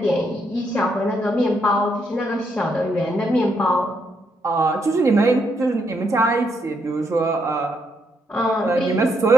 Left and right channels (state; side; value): normal; both; correlation 0.77